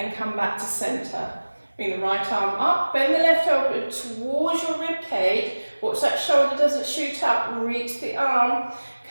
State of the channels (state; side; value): inverted; both; correlation -1.00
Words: come back to centre. Bring the right arm up, bend the left elbow towards your rib cage. Watch that shoulder doesn't shoot up, reach the arm,